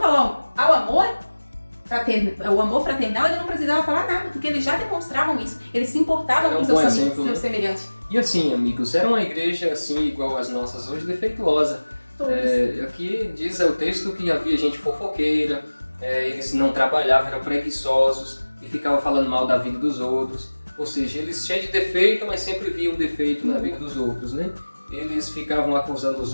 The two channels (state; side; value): inverted; both; correlation -1.00